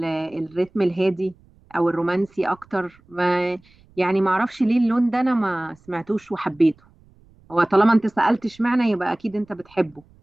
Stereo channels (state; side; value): noise; right; rumble, 30 dB below the sound